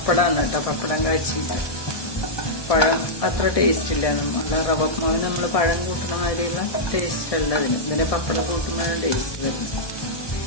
കേട്ടോ. പപ്പടം കാച്ചിട്ട്. പഴം അത്ര ടേസ്റ്റ് ഇല്ല. നല്ല റവമാവ് നമ്മൾ പഴം കൂട്ടുന്ന മാതിരിയുള്ള ടേസ്റ്റ് അല്ല അതിന്. ഇതിന് പപ്പടം കൂട്ടുന്നതാണ് ടേസ്റ്റ് വരുന്നത്.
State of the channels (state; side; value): late; right; 1.2 ms